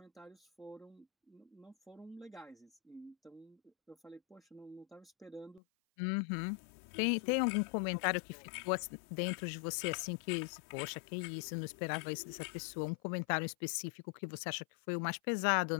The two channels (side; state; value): right; drops out; at 5.6 s